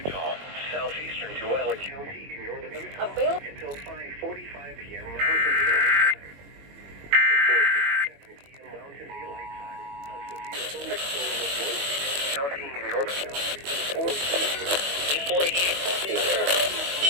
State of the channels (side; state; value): left; late; 21 ms